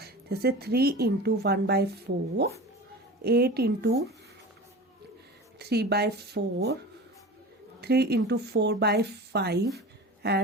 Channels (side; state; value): both; normal; correlation 0.33